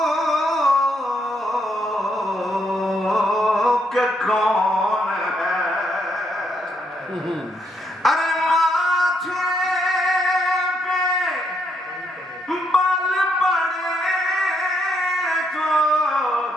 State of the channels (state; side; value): normal; both; correlation 0.75